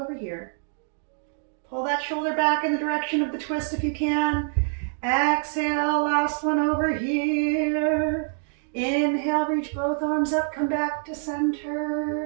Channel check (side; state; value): left; silent; digital silence